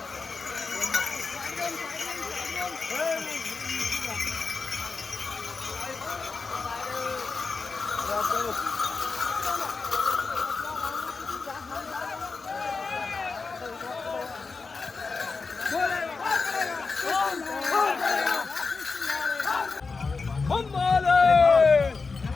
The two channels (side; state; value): right; quieter; 4.4 dB